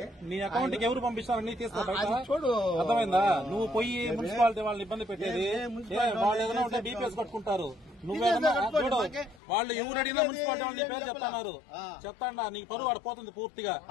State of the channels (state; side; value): drops out; right; at 9.4 s